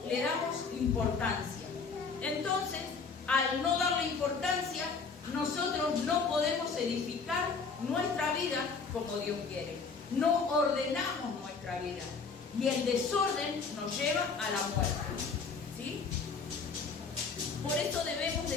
le damos importancia. Entonces, al no darle importancia, nosotros no podemos edificar nuestra vida como Dios quiere. No ordenamos nuestra vida. Y el desorden nos lleva a la muerte. ¿Sí? Por eso debemos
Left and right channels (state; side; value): quieter; right; 5.0 dB